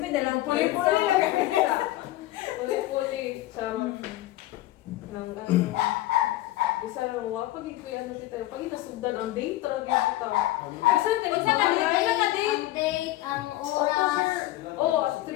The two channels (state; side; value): quieter; right; 16.5 dB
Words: na lang. Puli-puli lang. Puli-puli. Sa nang ano. Isa lang wa pag ikoy ano tita. Pag inasugdan ang date talaga kita. Isa ka Unsa ka date? Kailan ka date? Ang date, ang oras. Oh, 3